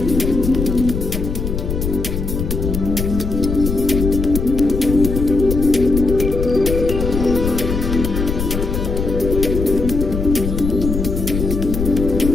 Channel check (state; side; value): noise; left; rumble, 3 dB below the sound